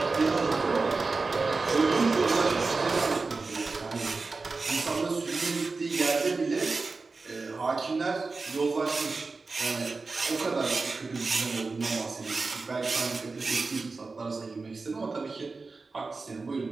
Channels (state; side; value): quieter; left; 4.0 dB